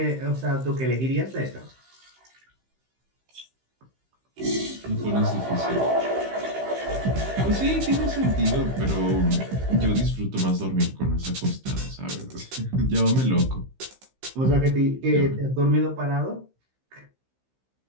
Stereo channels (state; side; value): late; left; 15 ms